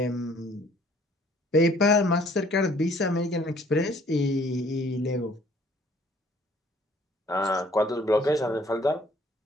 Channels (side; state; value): both; normal; correlation 0.58